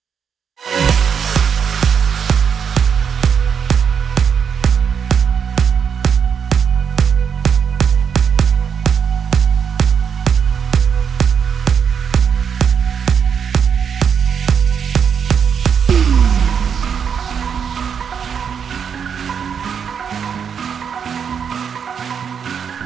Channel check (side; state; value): left; quieter; 7.2 dB